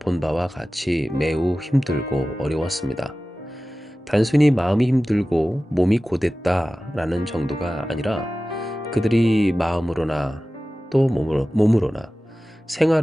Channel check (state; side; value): normal; both; correlation 0.96